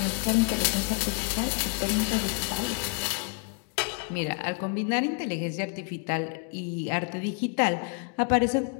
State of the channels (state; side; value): quieter; right; 39.6 dB